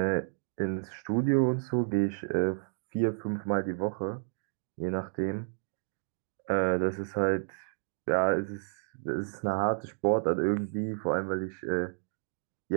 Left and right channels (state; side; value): silent; left; digital silence